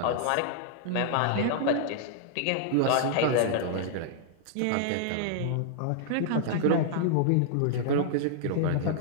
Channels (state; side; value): different; both; correlation -0.01